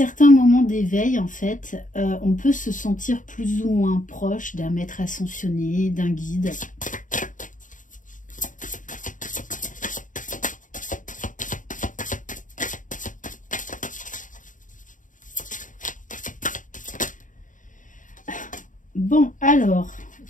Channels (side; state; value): right; late; 0.38 ms